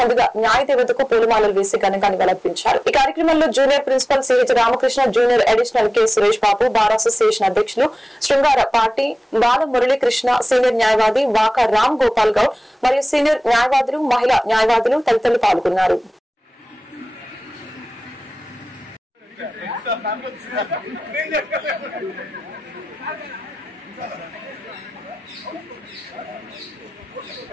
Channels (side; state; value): both; normal; correlation 0.98